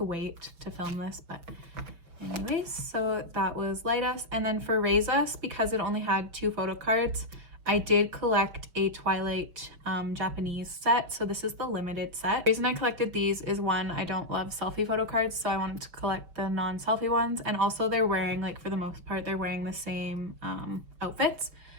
wait to film this, but anyways, so that was Light Us. And then for Raise Us, because it only had 2 photo cards, I did collect a Twilight Japanese set. So this is the limited set. The reason I collected these is, one, I don't love selfie photo cards, so I wanted to collect the non-selfie ones. And also they're wearing, like for the most part, they're wearing the same outfits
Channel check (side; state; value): left; late; 6.1 ms